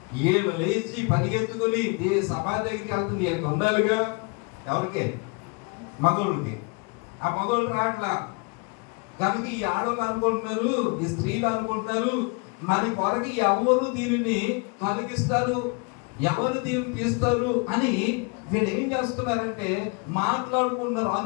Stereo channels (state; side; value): quieter; right; 32.7 dB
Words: ఏళ్ళు లేచి పరిగెత్తుకుని సమాధి దగ్గరికి వెళ్తుంది. వీళ్ళకి ఉండాలిగా. ఎవరికి? మగోళ్ళకి. ఆ మగోళ్ళు రాట్లా. కనుక ఈ ఆడవాళ్ళు అనుకుంటున్నారు, ఈ స్త్రీలు అనుకుంటున్నారు, మన కొరకు ఎవరు దీనిని తొలగిస్తారు, ఎవరు దీన్ని తీస్తారు అని వీళ్ళు ఏం చేస్తున్నారంటే మాట్లాడుకుంటున్నారు,